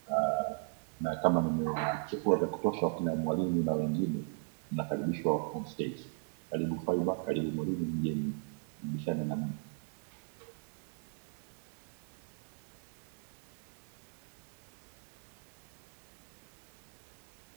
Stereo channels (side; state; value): left; silent; 53 dB below the other